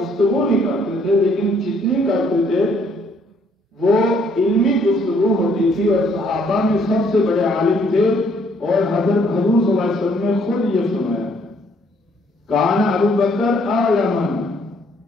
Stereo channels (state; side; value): normal; both; correlation 0.66